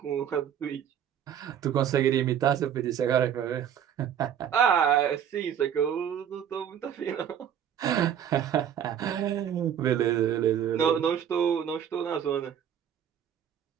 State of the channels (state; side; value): quieter; left; 9.1 dB